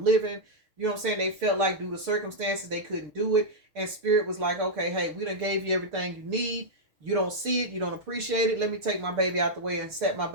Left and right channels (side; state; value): left; late; 6.4 ms